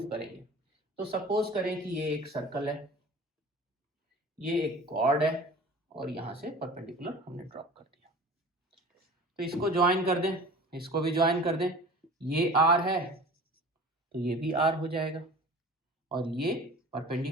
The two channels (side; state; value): both; normal; correlation 0.41